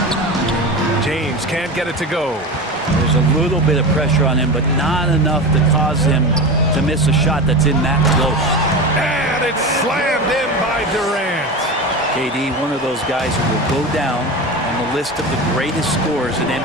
James can't get it to go. There's a little bit of pressure on him, but not enough to cause him to miss a shot that's in that close. And it's slammed in by Durant. KD, one of those guys who will go down on the list of the greatest scorers in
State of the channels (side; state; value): both; normal; correlation 0.26